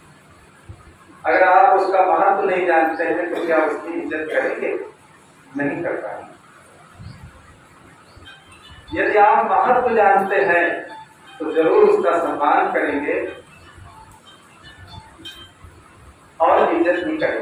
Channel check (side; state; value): both; identical; correlation 1.00